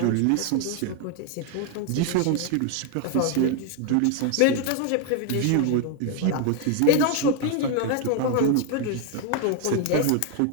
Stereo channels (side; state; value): both; different; correlation 0.01